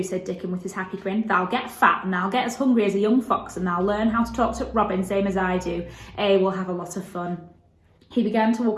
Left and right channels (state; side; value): identical; both; correlation 1.00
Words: said Dickon with his happy grin. Thou'll get fat and thou'll get as hungry as a young fox, and thou'll learn how to talk to Robin same as I do. We'll have a lot of fun. He began to